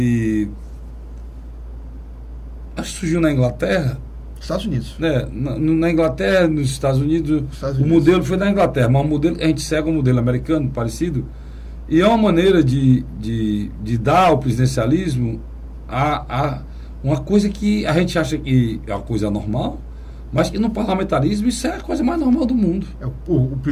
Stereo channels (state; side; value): identical; both; correlation 1.00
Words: acho que surgiu na Inglaterra. Estados Unidos. Na Inglaterra, nos Estados Unidos, o modelo foi na Inglaterra, mas o modelo, a gente segue um modelo americano parecido, e é uma maneira de dar ao presidencialismo uma coisa que a gente acha que é uma coisa normal, mas que no parlamentarismo isso é a coisa mais normal do mundo. O